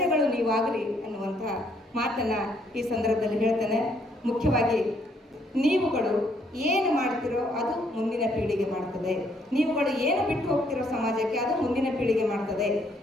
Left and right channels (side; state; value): both; normal; correlation 0.68